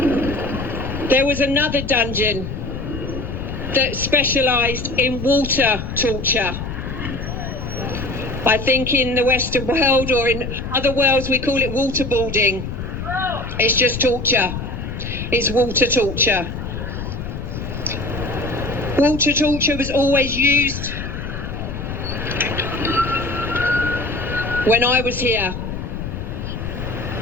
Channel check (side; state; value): left; noise; rumble, 6 dB below the sound